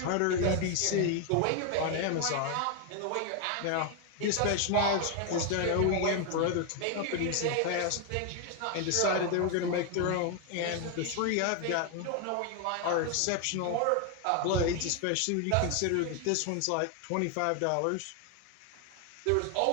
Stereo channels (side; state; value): both; different; correlation 0.01